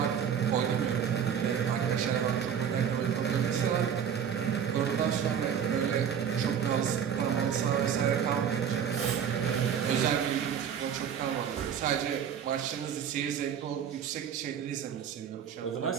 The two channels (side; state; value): left; quieter; 8.2 dB